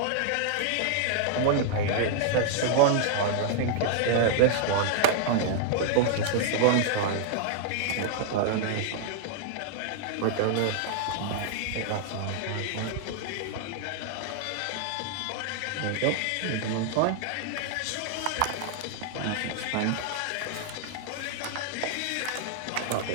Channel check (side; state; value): both; different; correlation 0.00